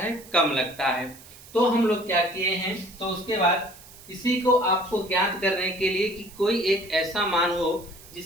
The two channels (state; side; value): noise; right; hiss, 20 dB below the sound